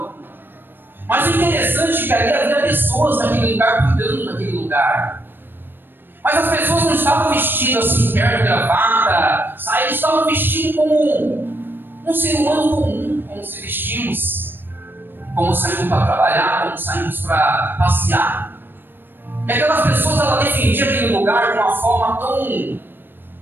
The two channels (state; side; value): late; left; 0.096 ms